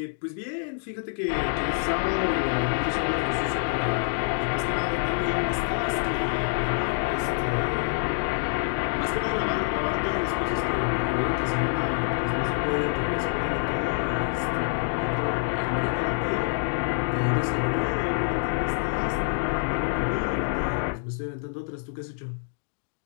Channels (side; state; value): right; silent; digital silence